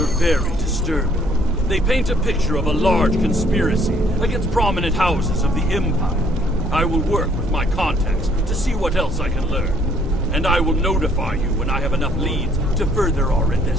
very disturbing. They paint a picture of a large conspiracy against prominent houses of the Empire. I will work with my contacts to see what else I can learn. And I will notify you when I have enough leads to further our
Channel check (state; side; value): normal; both; correlation 0.63